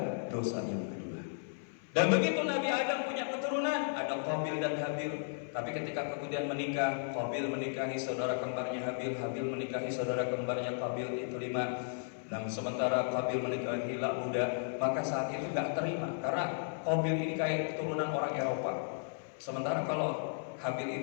dosa yang kedua. Dan begitu Nabi Adam punya keturunan, ada Qabil dan Habil. Tapi ketika kemudian menikah, Qabil menikahi saudara kembarnya Habil, Habil menikahi saudara kembarnya Qabil, itu 5. Nah, sementara Qabil menikahi Labuda, maka saat itu gak terima karena Qabil ini kayak keturunan orang Eropa. Sementara kalau Habil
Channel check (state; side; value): silent; right; 55 dB below the other